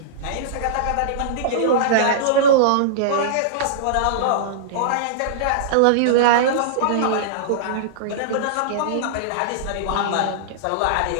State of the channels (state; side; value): different; both; correlation -0.03